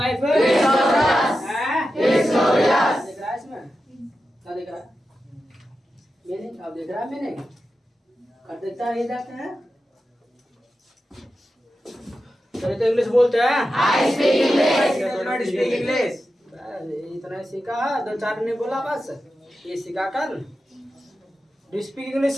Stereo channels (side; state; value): both; normal; correlation 0.91